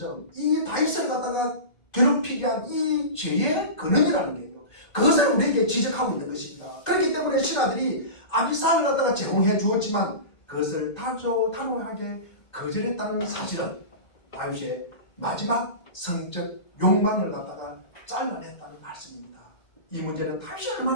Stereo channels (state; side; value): late; right; 1.8 ms